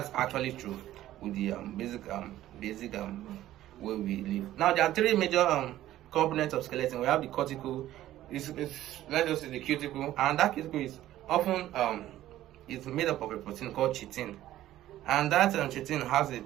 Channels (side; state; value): left; quieter; 13.8 dB